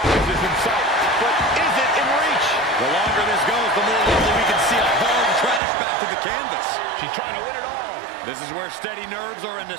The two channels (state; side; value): drops out; left; at 5.6 s